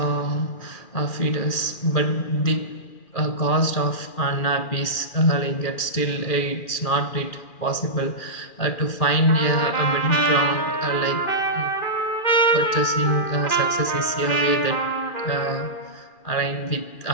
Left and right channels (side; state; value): right; late; 2.4 ms